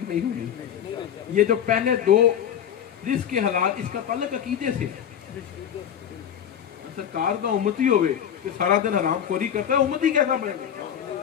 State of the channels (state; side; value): quieter; right; 9.2 dB